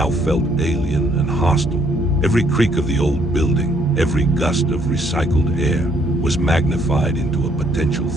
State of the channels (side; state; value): both; normal; correlation 0.67